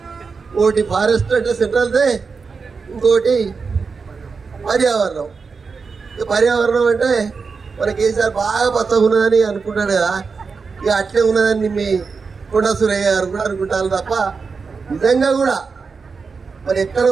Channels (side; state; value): left; quieter; 5.0 dB